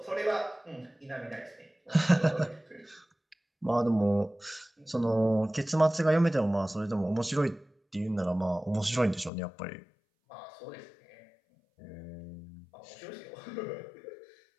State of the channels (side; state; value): right; drops out; at 9.3 s